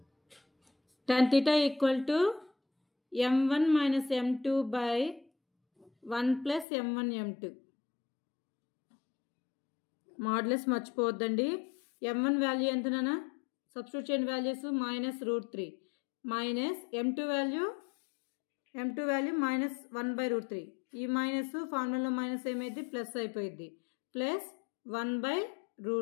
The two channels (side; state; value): right; drops out; at 6.7 s